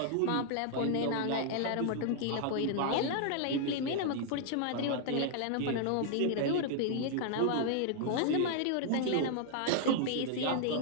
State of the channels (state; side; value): different; both; correlation -0.01